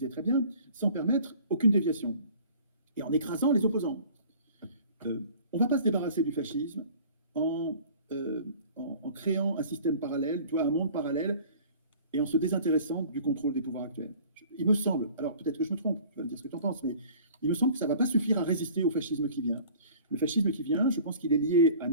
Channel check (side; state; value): both; inverted; correlation -0.48